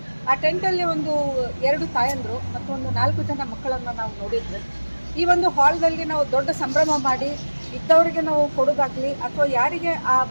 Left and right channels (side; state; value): both; inverted; correlation -1.00